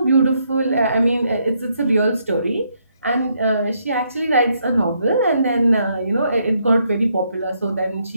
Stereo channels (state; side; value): inverted; both; correlation -0.75